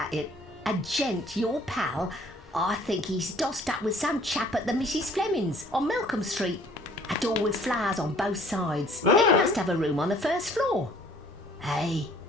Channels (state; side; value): normal; both; correlation 0.56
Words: it. A gent, your pal. I think he's dossed up with some chap at the Mrs. Fleming's on Malcolm Street. A door with flowers on both sides. He must have a room on the first floor. Hey,